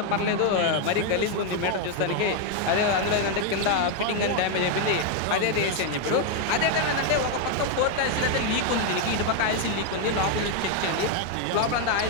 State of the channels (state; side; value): different; both; correlation 0.01